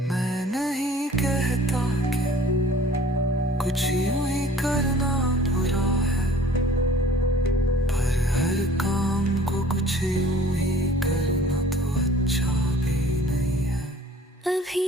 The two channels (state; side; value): normal; both; correlation 0.50